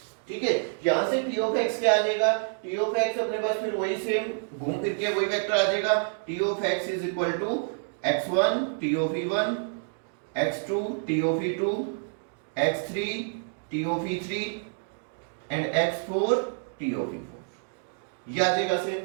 ठीक है। यहां से t ऑफ x क्या आ जाएगा, t ऑफ x अपने पास फिर वही सेम घूम फिर के वही वेक्टर आ जाएगा, t of x is equal to x1 t of e1 x2 t of e2 x3 t of e3 and x4 t of e4, ये आ जाएगा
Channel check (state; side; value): silent; left; digital silence